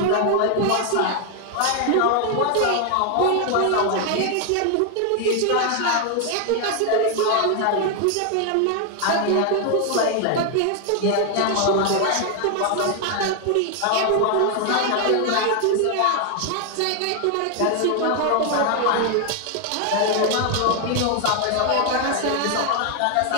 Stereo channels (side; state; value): both; different; correlation 0.00